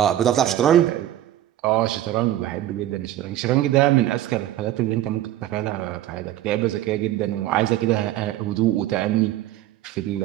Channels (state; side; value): quieter; left; 13.3 dB